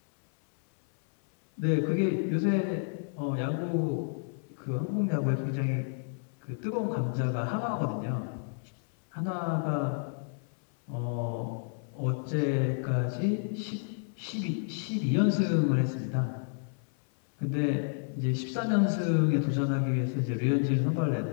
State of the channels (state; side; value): silent; right; 58 dB below the other